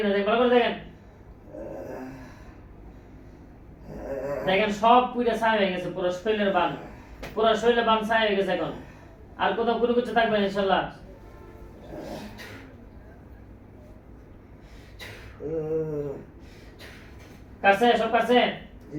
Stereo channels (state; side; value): identical; both; correlation 1.00